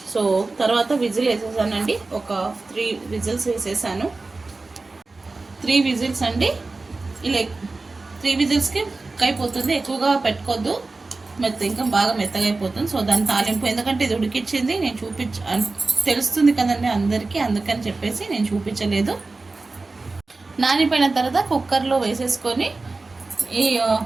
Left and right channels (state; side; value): quieter; left; 3.5 dB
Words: సో తర్వాత విజిల్ వేసేసానండి. ఒక 3 విజిల్స్ వేసేసాను. 3 విజిల్స్ అండి. ఇలా 3 విజిల్స్కి అయిపోతుంది. ఎక్కువగా పెట్టుకోవద్దు, ఇంకా బాగా మెత్తగా అయిపోతుంది. సో దాని తాలింపు, ఎందుకంటే ఇది ఉడికిచ్చింది నేను తెలుస్తుంది కదండి అందరికీ, అందుకని చెప్పేసి నేను చూపించలేదు. నానిపోయిన తర్వాత కుక్కర్లో వేసేసుకొని ఈ